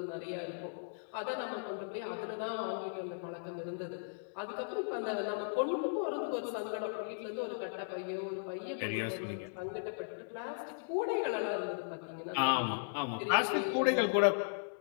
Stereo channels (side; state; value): right; silent; digital silence